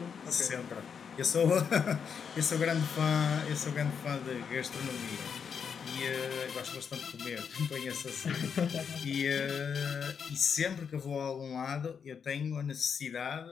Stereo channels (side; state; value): right; quieter; 6.8 dB